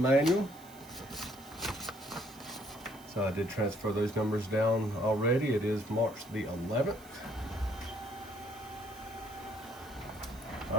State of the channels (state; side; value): noise; right; hiss, 22 dB below the sound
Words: So I did transfer those numbers down already. It is March the 11th.